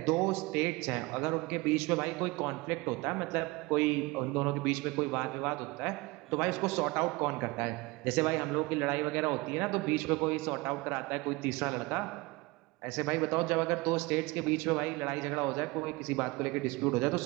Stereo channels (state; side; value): quieter; left; 23.7 dB